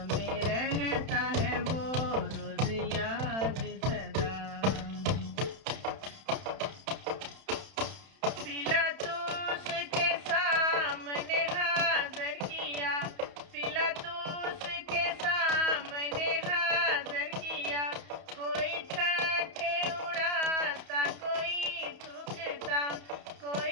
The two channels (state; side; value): late; left; 31 ms